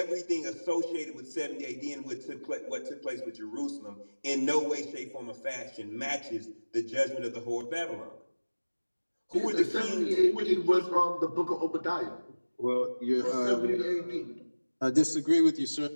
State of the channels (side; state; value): both; inverted; correlation -1.00